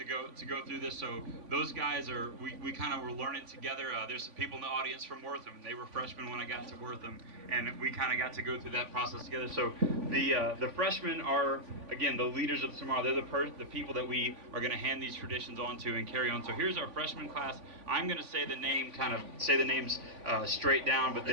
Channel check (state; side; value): late; left; 3.5 ms